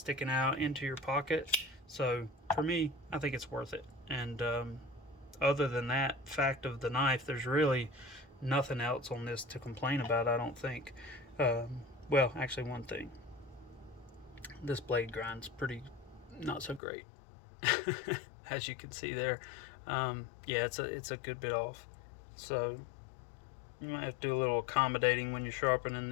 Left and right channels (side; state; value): right; drops out; at 16.8 s